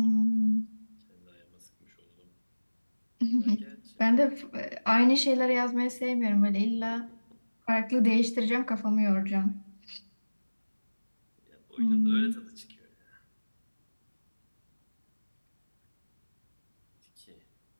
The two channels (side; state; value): both; inverted; correlation -1.00